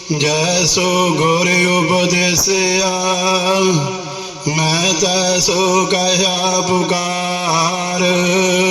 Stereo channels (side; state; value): both; identical; correlation 1.00